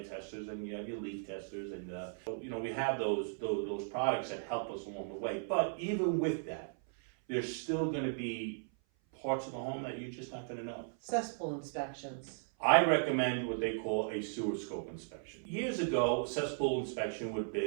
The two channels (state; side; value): silent; left; 53 dB below the other